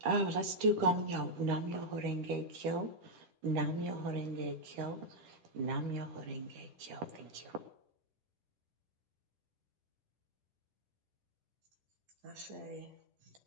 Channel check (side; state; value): left; late; 10 ms